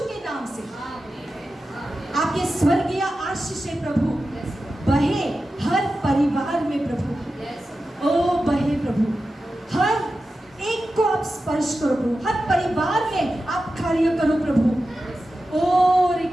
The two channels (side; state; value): both; normal; correlation 0.92